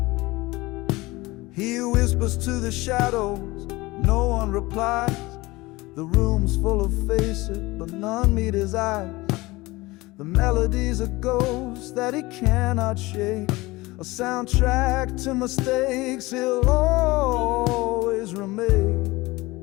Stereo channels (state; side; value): quieter; right; 21.1 dB